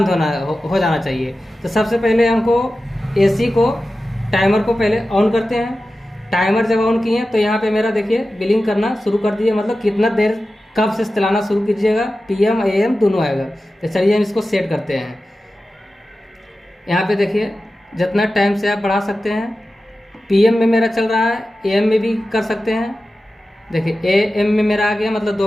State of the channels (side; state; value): both; normal; correlation 0.94